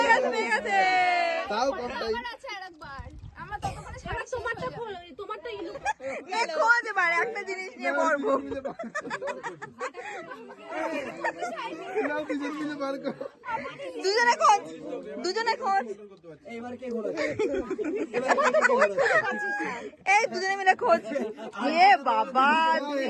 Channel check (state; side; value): identical; both; correlation 1.00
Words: হয়ে গেছে। তাও কম তাই আমার আছে আরেকবার, আমরা ততক্ষণে সারা তোমারটা খোলো, তোমারটা ইলু। খোঁজ এবার একটা জিনিস নিয়ে পড়বো। দুজনে খোঁজ, দুজনে খোঁজ, এবার কে ঘোরাচ্ছে এই দুজনে মিলে খোঁজ। এ বাবা